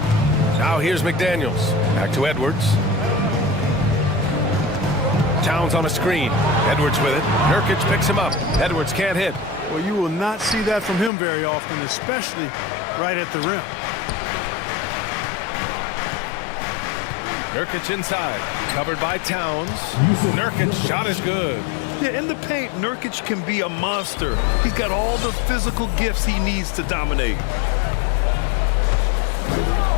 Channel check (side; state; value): right; drops out; at 11.1 s